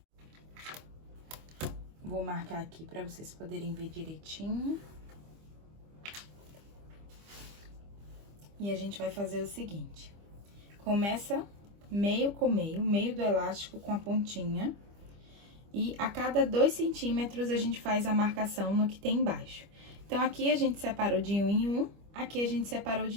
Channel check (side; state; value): left; late; 25 ms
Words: Vou marcar aqui pra vocês poderem ver direitinho. E a gente vai fazer o seguinte. Começa meio com meio do elástico com a pontinha. E a cada 2 centímetros a gente faz a marcação no que tem embaixo. Então, aqui a gente separou de 1 em 1, aqui a gente separou